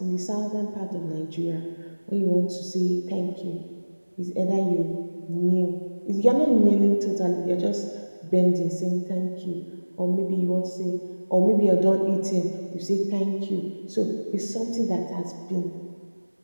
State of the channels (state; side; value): inverted; both; correlation -1.00